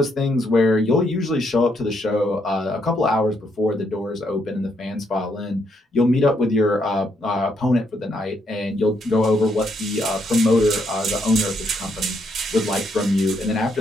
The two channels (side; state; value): both; normal; correlation 0.75